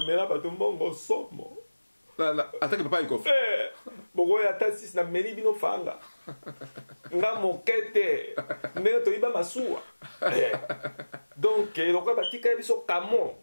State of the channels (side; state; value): both; inverted; correlation -1.00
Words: mela bato mbongo somo attaque papa Ekofo bokoya ata sisi na meli bino fanga nga mokete ndenge toyiba masuwa donc eloko batika biso kamo